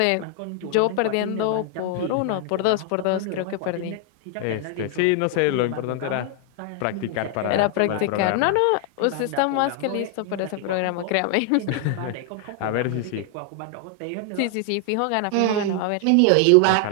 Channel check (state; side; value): different; both; correlation 0.00